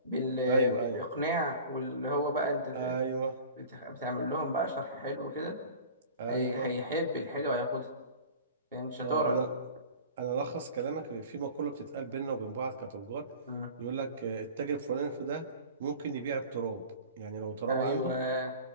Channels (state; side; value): inverted; both; correlation -0.41